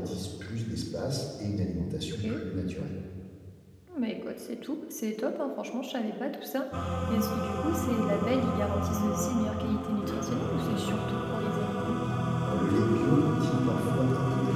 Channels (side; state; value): both; identical; correlation 1.00